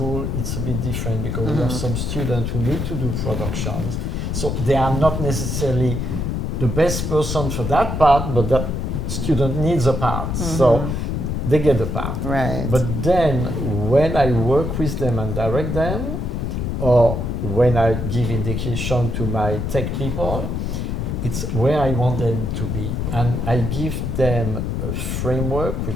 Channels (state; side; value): noise; left; rumble, 2 dB below the sound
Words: it's a bit different, because we have some students who need to do productions, so they are not necessarily the best person for that part, but that student needs a part, so they get the part. Right. But then when I work with them and direct them, or when I give indication to my tech people, it's where I want them to be, and I give them a framework